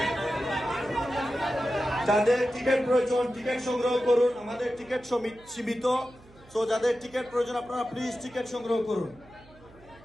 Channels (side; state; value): right; noise; hum, 25 dB below the sound